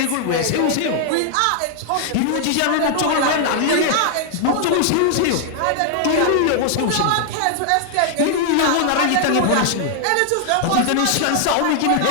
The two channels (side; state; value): both; different; correlation -0.01